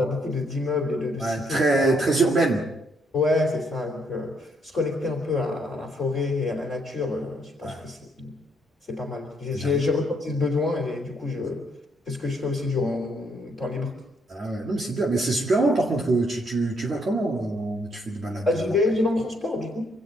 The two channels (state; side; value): normal; both; correlation 0.72